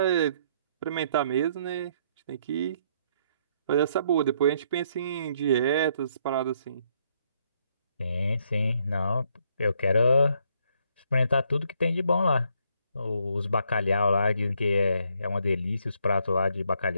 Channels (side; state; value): both; inverted; correlation -0.70